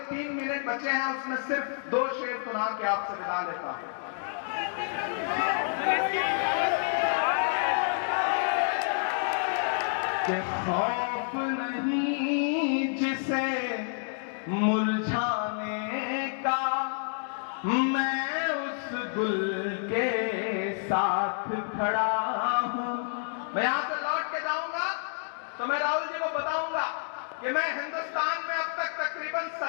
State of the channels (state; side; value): silent; right; digital silence